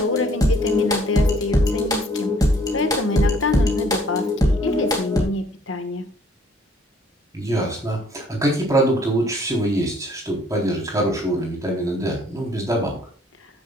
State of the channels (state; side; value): normal; both; correlation 0.61